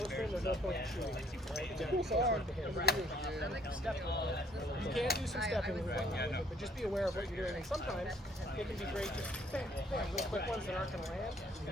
to him, there's no point in shooting. You can do some stepping with it, but just be aware of what you're doing. And sometimes it can be great just bam, bam, real quick ones that aren't going to land. You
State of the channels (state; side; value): normal; both; correlation 0.64